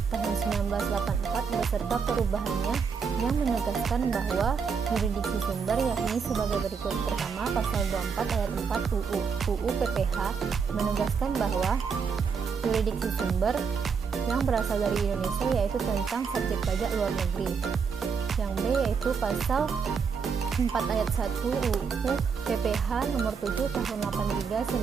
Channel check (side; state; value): left; quieter; 6.0 dB